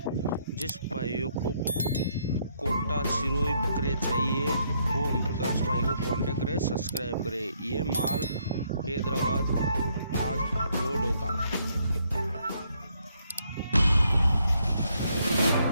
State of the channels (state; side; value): inverted; both; correlation -0.72